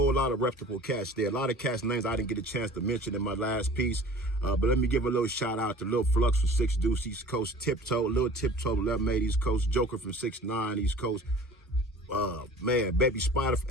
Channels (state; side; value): normal; both; correlation 0.44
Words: lot of reputable cats there. A lot of cats' names I didn't get a chance to mention in my last piece. But let me give a little shout out to Lil Flux from 6 Deuce East Coast, Tiptoe, Lil Tiptoe, 11-8 East Coast, Joker from 6'9 East Coast. Man, Baby Spider from